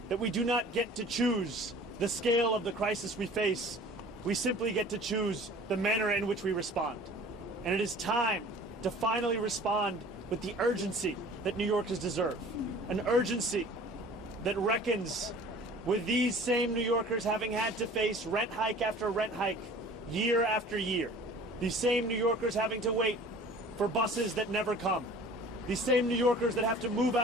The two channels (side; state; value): both; normal; correlation 0.46